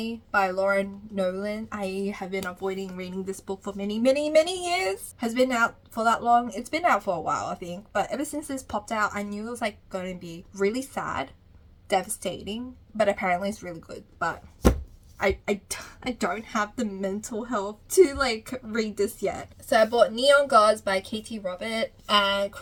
by Laura Nowlin. I have been avoiding reading this book for many years. Has been out for that long. It's been out for a while, I think, but ever since this popped out, I knew it was like going to be really sad, devastating, but apparently it's really good. But I don't have the mental health to like read this yet. So I bought Neon Gods by Katee and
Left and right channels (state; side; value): identical; both; correlation 1.00